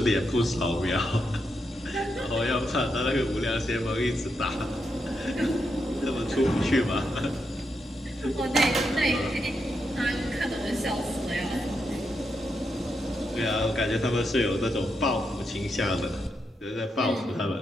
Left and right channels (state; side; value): normal; both; correlation 0.83